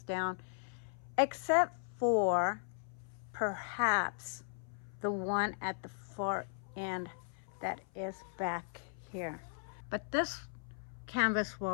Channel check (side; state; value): right; silent; 53 dB below the other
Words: down, except for perhaps the one at the far end that is back here. But this canvas